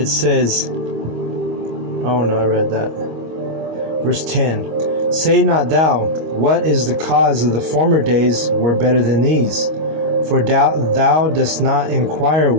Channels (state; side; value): late; left; 25 ms